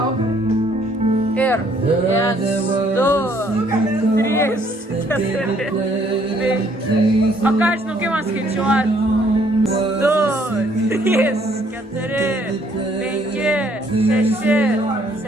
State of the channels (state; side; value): normal; both; correlation 0.64